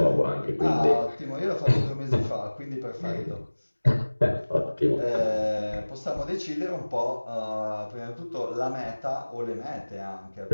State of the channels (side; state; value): both; inverted; correlation -1.00